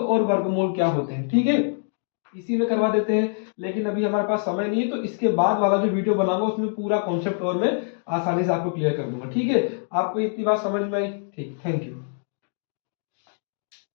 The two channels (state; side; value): silent; right; digital silence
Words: वर्गमूल क्या होते हैं, ठीक है, इसी में करवा देते हैं, लेकिन अभी हमारे पास समय नहीं है, तो इसके बाद वाला जो वीडियो बनाऊंगा उसमें पूरा कॉन्सेप्ट और मैं आसानी से आपको क्लियर कर दूंगा, ठीक है, आपको इतनी बात समझ में आई, ठीक, थैंक यू।